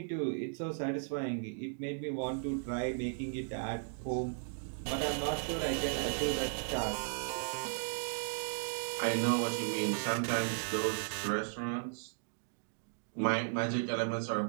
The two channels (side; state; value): left; silent; digital silence